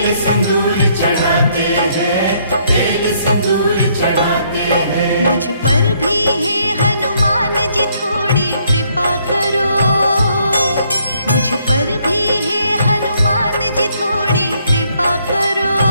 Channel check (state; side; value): inverted; both; correlation -0.68